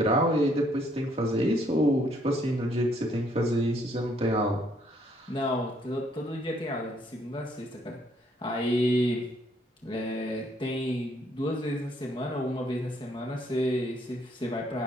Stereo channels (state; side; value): normal; both; correlation 0.68